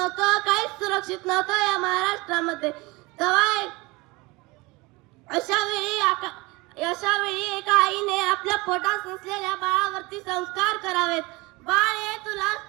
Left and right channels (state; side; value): quieter; left; 23.8 dB